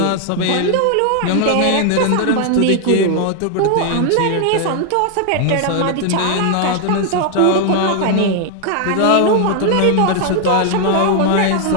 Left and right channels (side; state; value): both; different; correlation 0.00